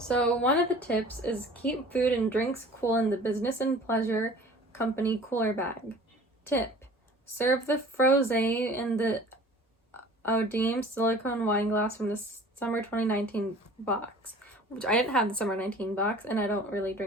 one of the tips is keep food and drinks cool in the business and pleasure company cooler bag. Tip: serve the frosé in the Odime silicone wine glass from the summer 2019 box, which I didn't have the summer 19 box, and I don't really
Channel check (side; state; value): both; normal; correlation 0.46